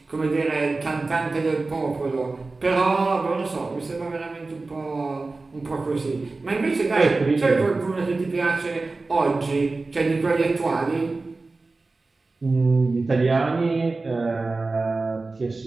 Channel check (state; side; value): quieter; left; 3.6 dB